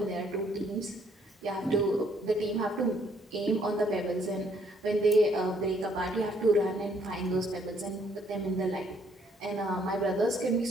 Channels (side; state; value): both; normal; correlation 0.67